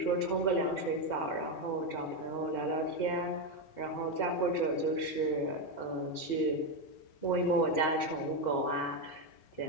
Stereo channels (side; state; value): right; late; 4.8 ms